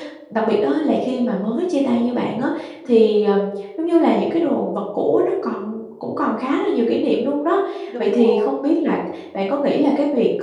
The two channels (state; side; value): identical; both; correlation 1.00